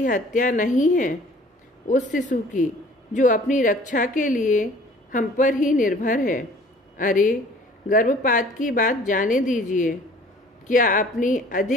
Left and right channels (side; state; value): both; normal; correlation 0.51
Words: हत्या नहीं है? उस शिशु की जो अपनी रक्षा के लिए हम पर ही निर्भर है। अरे, गर्भपात की बात जाने दीजिए। क्या अपनी